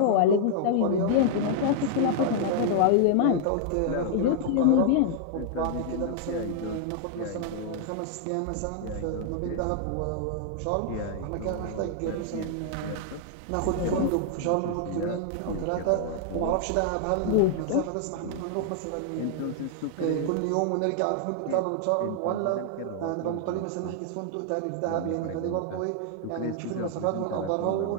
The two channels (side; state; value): both; different; correlation -0.01